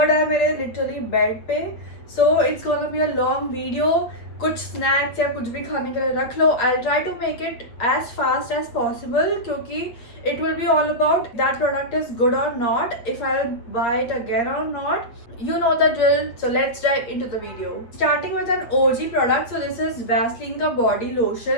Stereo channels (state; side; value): late; right; 8.5 ms